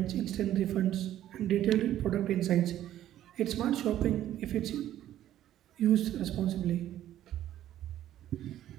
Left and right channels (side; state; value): left; quieter; 12.3 dB